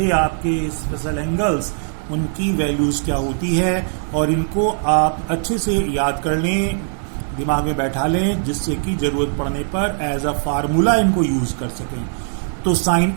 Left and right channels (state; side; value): silent; left; digital silence